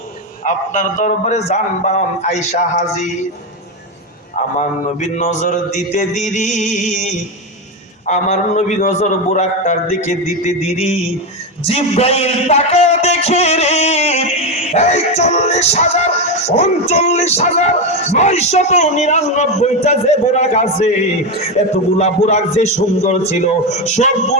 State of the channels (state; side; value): normal; both; correlation 0.11